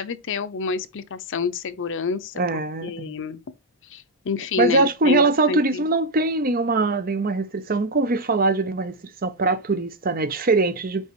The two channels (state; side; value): normal; both; correlation 0.02